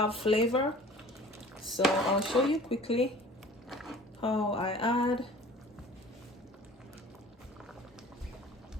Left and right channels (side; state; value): both; normal; correlation 0.46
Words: flavor. So I'll show you quickly how I add.